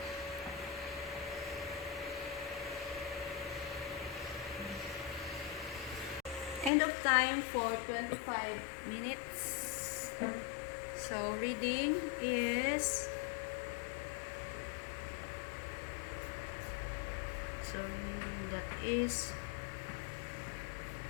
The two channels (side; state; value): right; drops out; at 6.7 s